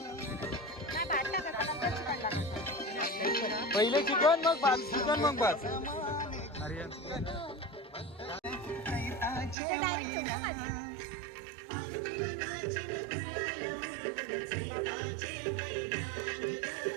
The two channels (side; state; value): left; drops out; at 9.6 s